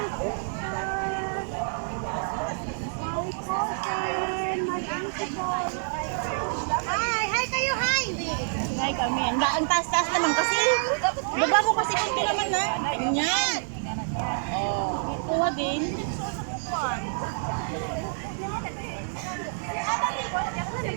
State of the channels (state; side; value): silent; left; digital silence